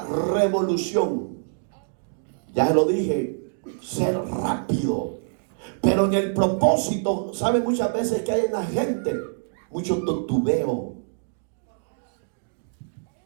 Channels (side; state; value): left; silent; digital silence